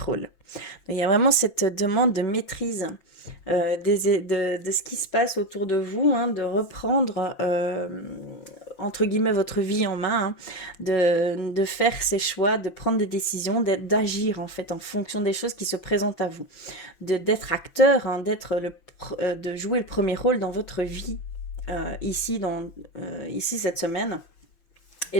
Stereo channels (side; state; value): right; late; 5.9 ms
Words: Donc, il y a vraiment cette demande de maîtrise de ce qui se passe autour de vous, hein, de reprendre entre guillemets votre vie en main, hein, de faire ses choix, de prendre des décisions, d'agir en fait en fonction des choses qui se présentent à vous, d'être acteur, hein, de jouer le premier rôle dans votre vie ici cette semaine.